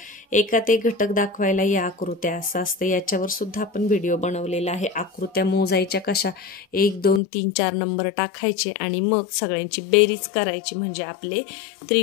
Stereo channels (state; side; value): drops out; right; at 7.2 s